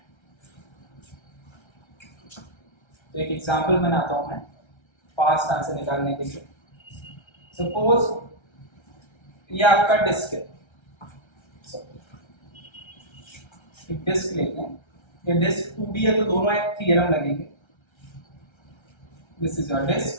तो एक एग्जांपल बनाता हूं मैं फास्ट आंसर निकालने के लिए। सपोज ये आपका डिस्क है, एक डिस्क लेते हैं, ये डिस्क 2D है तो दोनों एक थ्योरम लगेंगे। दिस इज योर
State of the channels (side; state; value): right; late; 1.3 ms